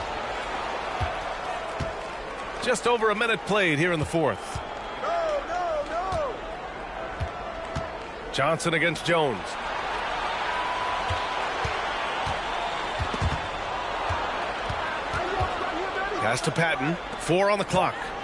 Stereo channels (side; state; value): both; identical; correlation 1.00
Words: Just over a minute played here in the fourth. Johnson against Jones. Pass to Patton. 4 on the clock.